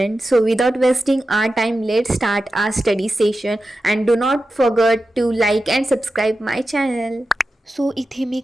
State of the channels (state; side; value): normal; both; correlation 0.92